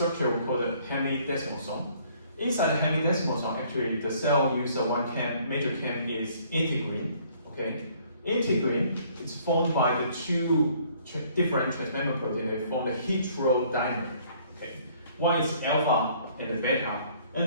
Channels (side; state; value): both; inverted; correlation -0.60